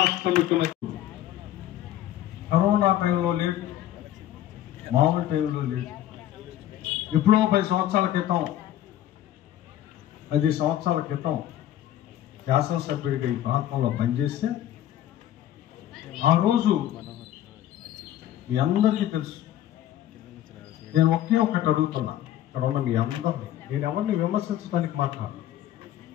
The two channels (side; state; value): right; quieter; 12.3 dB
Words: ముఖ్యమంత్రి. కరోనా టైంలో లేదు, మామూలు టైంలో లేదు. ఎప్పుడో 10 సంవత్సరాల క్రితం, 10 సంవత్సరాల క్రితం శాసనసభ్యుడిగా ఈ ప్రాంతంలో పనిచేస్తే, ఆ రోజు మీ అందరికీ తెలుసు. నేను ఒకే ఒక్కటి అడుగుతున్నా, ఇక్కడ ఉన్న మీ అందరినీ. నేను ఎవరిని విమర్శించడానికి మాట్లాడు,